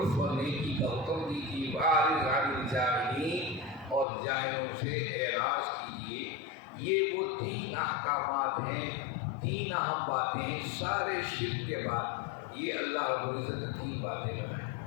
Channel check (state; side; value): drops out; right; at 4.0 s